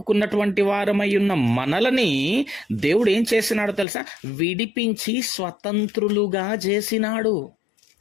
వారమై ఉన్న మనలని దేవుడు ఏం చేసినాడో తెలుసా? విడిపించి స్వతంత్రులుగా చేసినాడు.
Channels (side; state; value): right; drops out; at 3.9 s